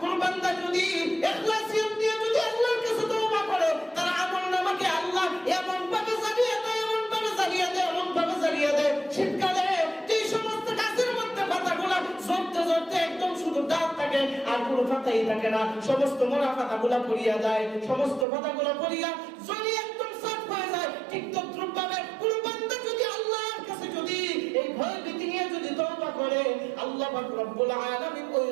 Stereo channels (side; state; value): left; drops out; at 18.2 s